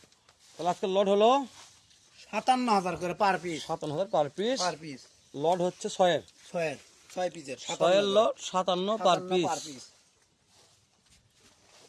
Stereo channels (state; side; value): identical; both; correlation 1.00